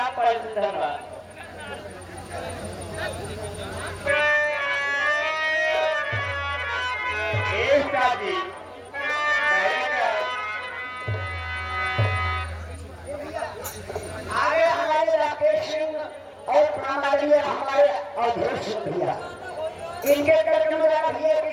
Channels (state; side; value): identical; both; correlation 1.00